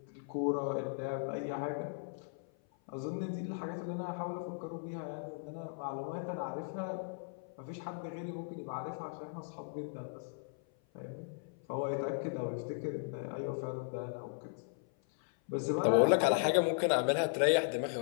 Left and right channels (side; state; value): right; silent; 53 dB below the other